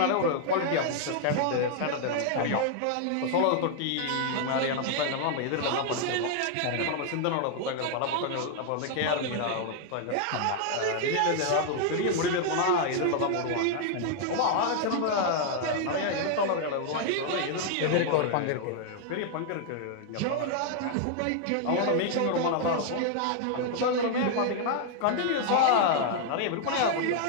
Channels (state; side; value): different; both; correlation 0.00